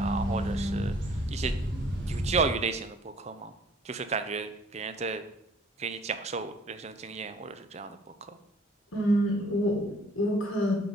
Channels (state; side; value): normal; both; correlation 0.56